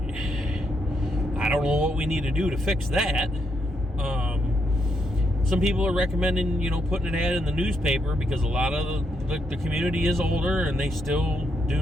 what we need to do to fix that. Some people are recommending, putting an ad in the newspaper because a lot of the community is older and they still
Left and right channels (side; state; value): both; normal; correlation 0.79